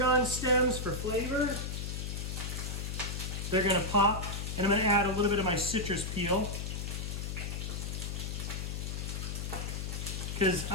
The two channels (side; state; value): left; noise; hum, 4 dB below the sound